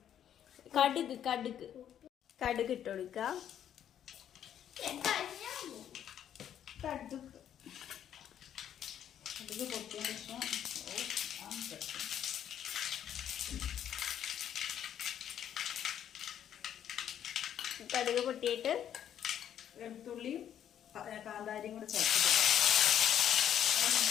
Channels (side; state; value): right; quieter; 10.0 dB